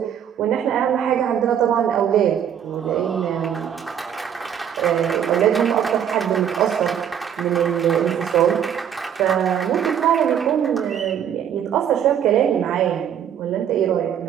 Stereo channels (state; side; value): quieter; left; 9.0 dB